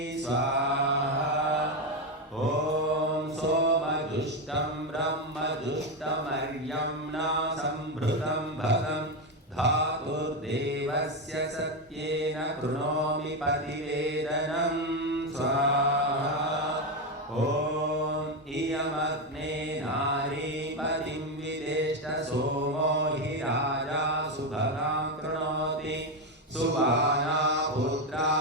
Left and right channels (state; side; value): normal; both; correlation 0.10